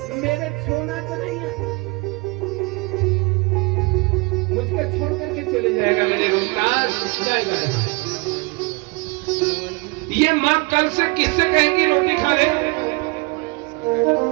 मेरे छोड़ना तो नहीं है, मुझको छोड़ करके चले जाएगा मेरे रोहितास, जाएगा। ये माँ कल से किससे कहेगी रोटी खा ले?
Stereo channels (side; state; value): left; quieter; 28.5 dB